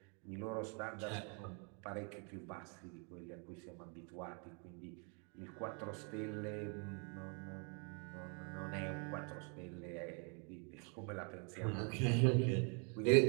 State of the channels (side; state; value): left; quieter; 36.8 dB